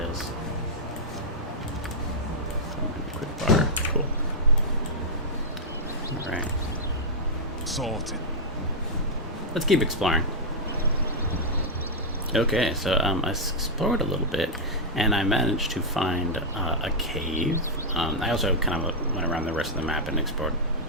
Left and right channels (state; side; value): normal; both; correlation -0.06